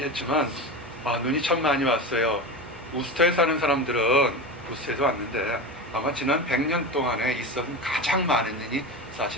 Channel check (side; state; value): both; normal; correlation 0.24